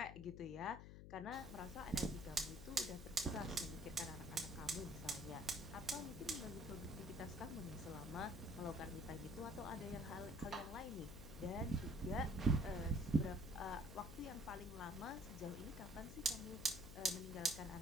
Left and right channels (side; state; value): left; noise; hum, 11 dB below the sound